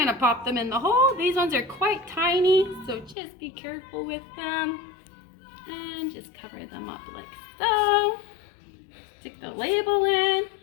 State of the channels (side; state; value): right; drops out; at 3.2 s